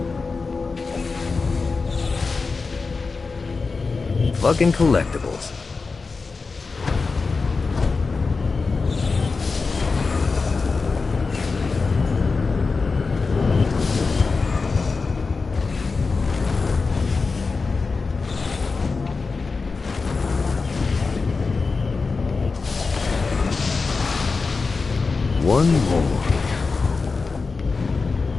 Fucking collectibles. One more.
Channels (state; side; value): quieter; right; 4.3 dB